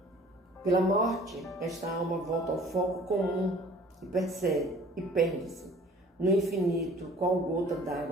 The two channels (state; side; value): normal; both; correlation 0.50